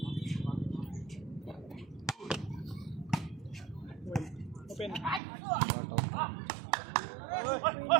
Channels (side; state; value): left; drops out; at 5.2 s